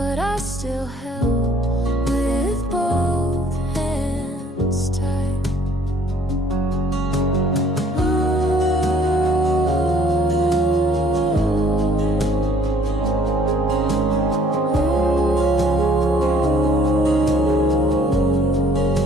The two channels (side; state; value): both; normal; correlation 0.60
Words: I still held with both hands tight.